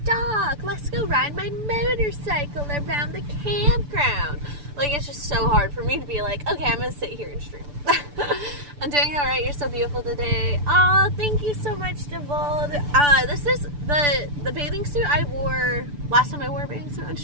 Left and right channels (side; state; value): left; late; 6.9 ms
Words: dock, let's go ride my motorcycle around the campground. Like, it's just so hard for me to be like, okay, I'm gonna sit here and stream. I'm doing alright, you're so beautiful today. Oh, thank you so much, Devold. This is the bathing suit I wore last time I wore a bathing suit on